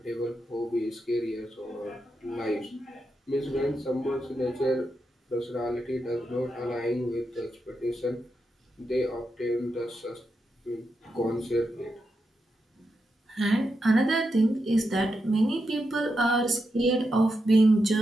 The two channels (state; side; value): normal; both; correlation 0.86